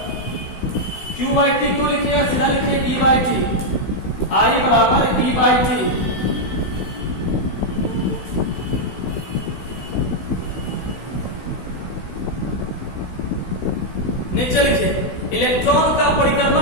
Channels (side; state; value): right; late; 16 ms